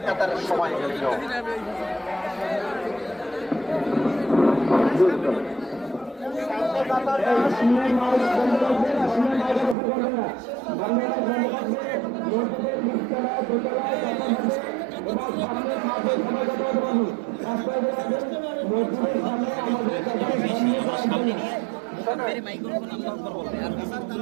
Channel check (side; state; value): left; drops out; at 9.8 s